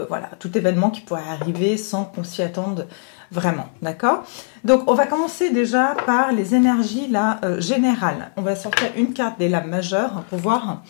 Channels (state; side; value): silent; right; 57 dB below the other